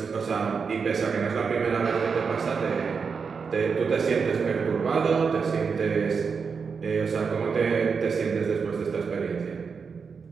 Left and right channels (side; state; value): left; quieter; 5.6 dB